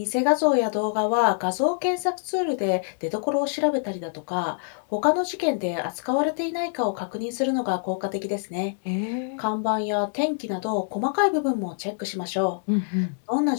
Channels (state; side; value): silent; right; digital silence